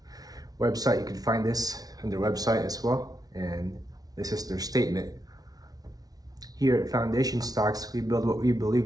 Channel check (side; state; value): left; late; 0.18 ms